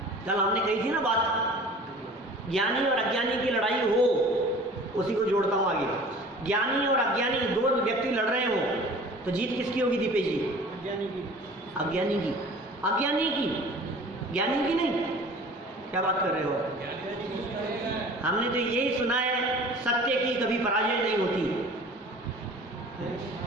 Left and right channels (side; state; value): both; normal; correlation 0.45